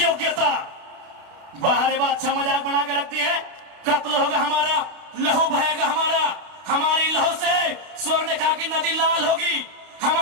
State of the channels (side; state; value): left; late; 32 ms